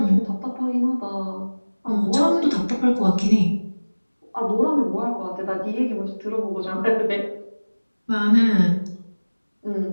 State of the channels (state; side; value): inverted; both; correlation -1.00